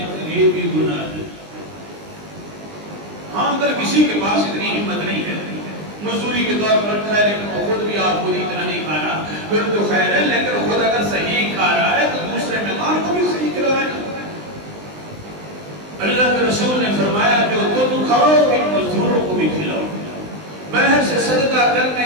یہ بھی گناہ ہے. ہاں اگر کسی کے پاس اتنی ہمت نہیں ہے، مزدوری کے طور پر رکھا ہے لیکن وہ خود بھی آپ خود اتنا نہیں کھا رہا، پھر تو خیر ہے. لیکن خود اگر صحیح کھا رہا ہے تو دوسرے مہمان کو بھی صحیح کھلائے. اللہ کے رسول نے فرمایا جو تم کھاؤ ان مزدوروں کو بھی کھلاؤ. باہر سے صدقہ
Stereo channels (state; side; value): late; left; 20 ms